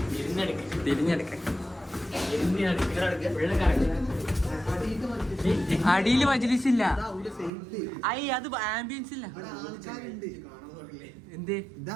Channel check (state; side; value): drops out; left; at 7.5 s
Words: അടിയില് മജ്‌ലിസ് ഇല്ല. അത് ആംബിയൻസ് ഇല്ല. എന്തേ